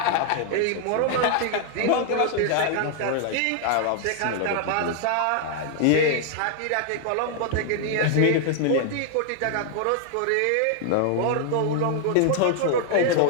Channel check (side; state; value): both; different; correlation 0.00